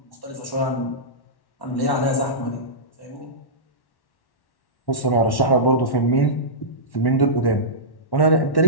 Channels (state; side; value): late; right; 1.1 ms